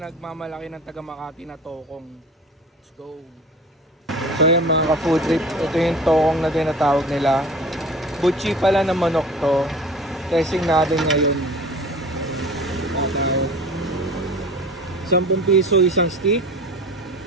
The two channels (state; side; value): normal; both; correlation 0.41